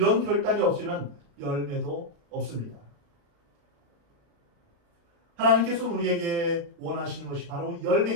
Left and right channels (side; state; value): left; late; 35 ms